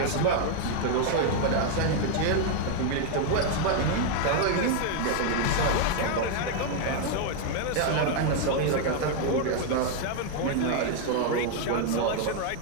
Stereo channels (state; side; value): different; both; correlation 0.00